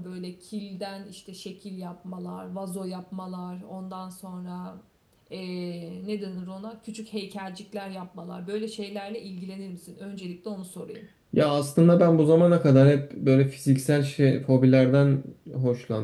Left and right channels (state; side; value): identical; both; correlation 1.00